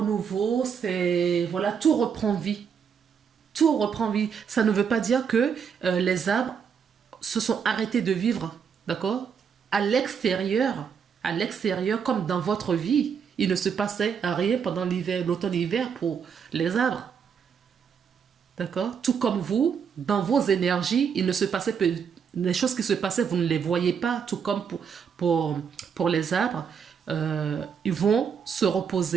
c'est... Voilà, tout reprend vie. Tout reprend vie. Ça ne veut pas dire que les arbres se sont arrêtés de vivre, d'accord? À l'extérieur, comme dans votre vie, il ne se passait rien pendant l'hiver, l'automne-hiver pour les arbres. D'accord? Tout comme vous, dans vos énergies, il ne se passait peu, les choses qui se passaient, vous ne les voyez pas, tout comme pour les arbres. Ils vont se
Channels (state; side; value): quieter; left; 6.9 dB